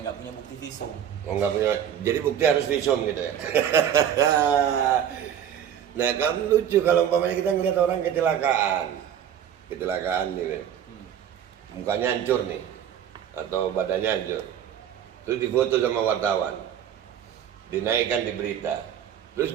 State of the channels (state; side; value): quieter; left; 9.5 dB